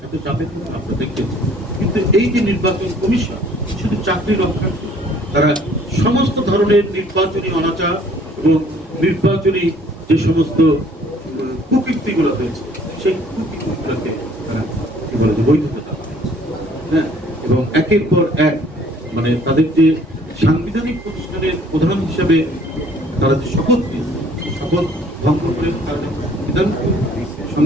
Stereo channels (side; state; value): both; normal; correlation 0.57